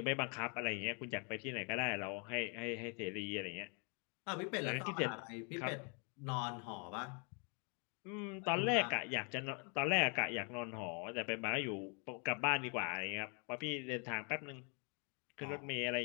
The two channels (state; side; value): quieter; right; 36.6 dB